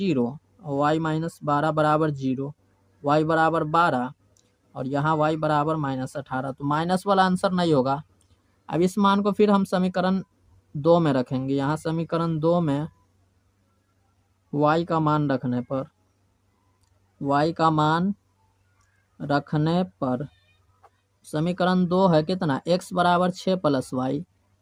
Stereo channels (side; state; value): both; identical; correlation 1.00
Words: और y माइनस 12 बराबर 0, y बराबर 12 और यहाँ y बराबर माइनस 18, तो माइनस वाला आंसर नहीं होगा। अब इस मान को फिर हम समीकरण 2 में रखेंगे, यहाँ समीकरण 2 में y का मान रखने पर, y का मान रखने पर समीकरण 2 है कितना, x बराबर 6 प्लस वाई,